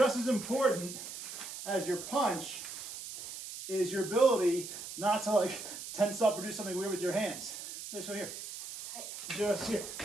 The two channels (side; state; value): right; noise; hiss, 9 dB below the sound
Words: as important as your punch is your ability not to like tense up or do something weird with your hands. This one here. Just here.